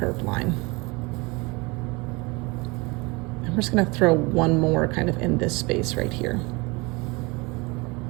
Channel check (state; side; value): quieter; left; 26.0 dB